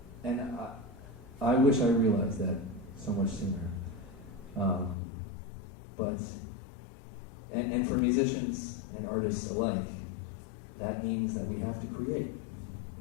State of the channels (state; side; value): drops out; right; at 5.0 s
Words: And I wish I realized that so much sooner. But for musicians and artists alike, that means that we have to create.